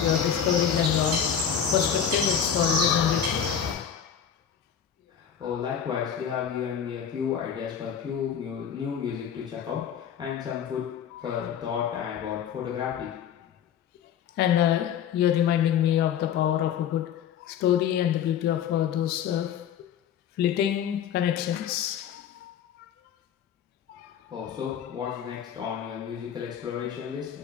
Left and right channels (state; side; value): quieter; right; 8.5 dB